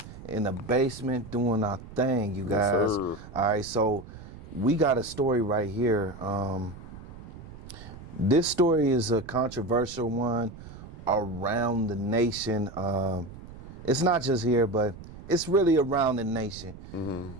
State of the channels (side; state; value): right; noise; rumble, 15 dB below the sound